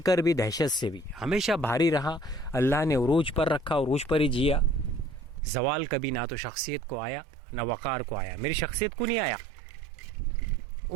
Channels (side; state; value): left; drops out; at 5.4 s